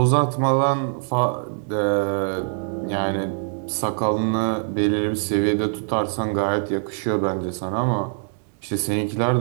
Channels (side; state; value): left; silent; 57 dB below the other